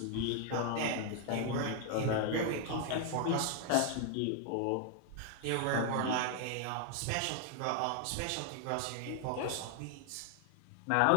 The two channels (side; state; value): both; different; correlation 0.00